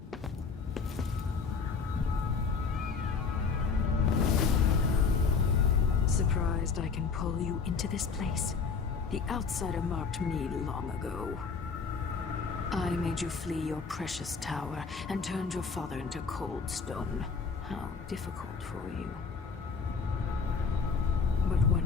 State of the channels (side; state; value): right; quieter; 5.2 dB